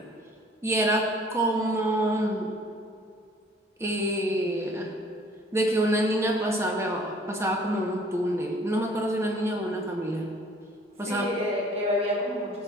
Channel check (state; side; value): normal; both; correlation 0.55